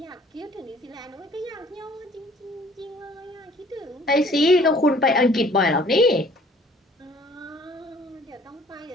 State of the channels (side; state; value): both; normal; correlation 0.55